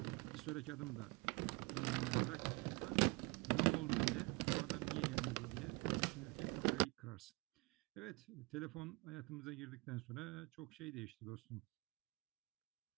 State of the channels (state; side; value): quieter; left; 26.8 dB